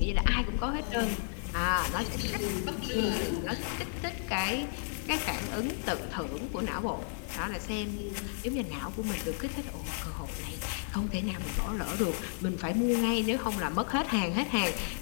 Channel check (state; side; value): silent; right; 55 dB below the other